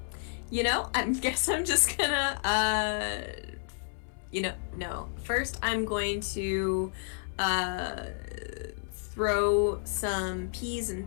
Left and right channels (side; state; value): right; silent; 57 dB below the other